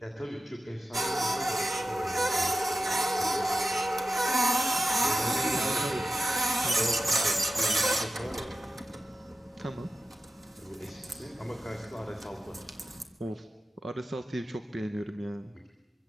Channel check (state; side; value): normal; both; correlation 0.93